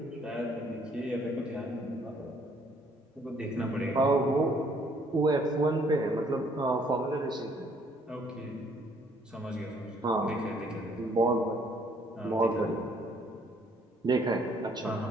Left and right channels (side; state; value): both; normal; correlation 0.64